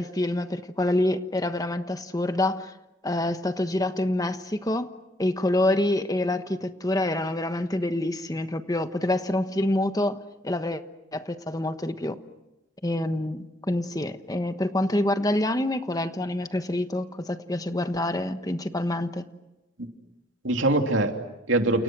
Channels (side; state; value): both; normal; correlation 0.66